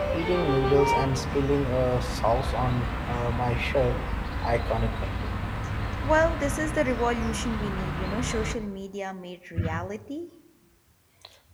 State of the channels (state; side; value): identical; both; correlation 1.00